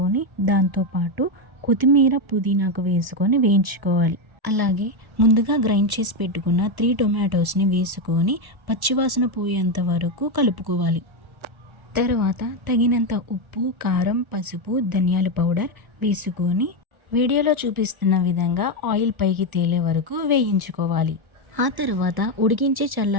దాంతోపాటు కొత్తిమీర పుదీనాకు వేసుకొని వేయించుకోవాలి. అలాగే ముందుగా గ్రైండ్ చేసి పెట్టుకున్న 3 టొమాటోస్ని వేసుకొని పచ్చివాసన పోయేంత వరకు కలుపుకోవాలి. తర్వాత తగినంత ఉప్పు, కారం, పసుపు, ధనియాల పౌడర్ వేసుకొని వీడియోలో చూపిస్తున్న విధంగా ఆయిల్ పైకి తేలే వరకు వేయించుకోవాలి. ఆ తర్వాత ఉడికించి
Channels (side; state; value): left; late; 1.0 ms